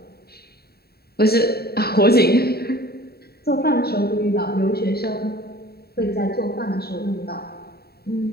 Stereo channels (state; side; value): late; right; 0.46 ms